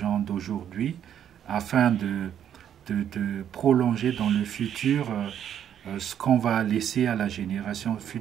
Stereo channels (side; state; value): left; quieter; 9.6 dB